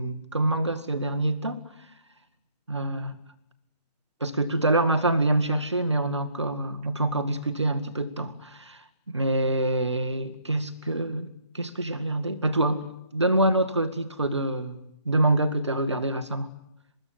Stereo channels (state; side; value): inverted; both; correlation -0.65